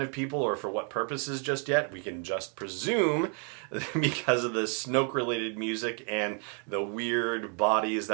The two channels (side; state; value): left; quieter; 39.7 dB